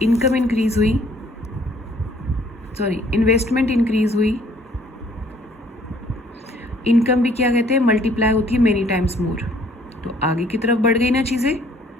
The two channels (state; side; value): normal; both; correlation 0.61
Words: इनकम इंक्रीज हुई, सॉरी इन्वेस्टमेंट इंक्रीज हुई, इनकम भी क्या कहते हैं मल्टीप्लाई होती है मेनी टाइम्स मोर, तो आगे की तरफ बढ़ गई ना चीज़ें।